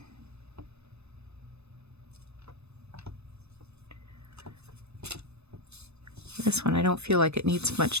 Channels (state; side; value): late; left; 0.80 ms